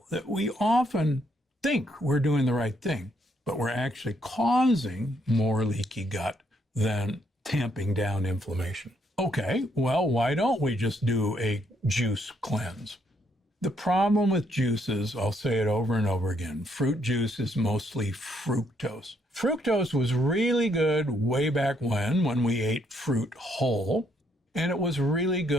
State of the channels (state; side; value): normal; both; correlation 0.72